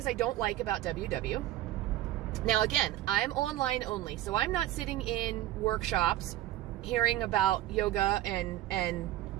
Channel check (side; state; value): left; quieter; 14.5 dB